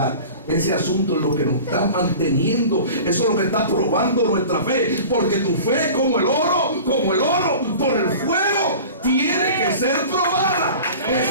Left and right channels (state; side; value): inverted; both; correlation -0.39